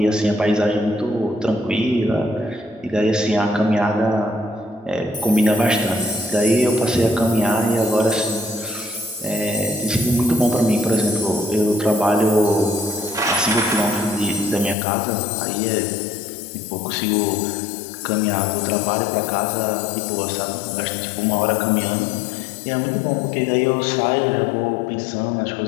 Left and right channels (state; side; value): drops out; right; at 14.8 s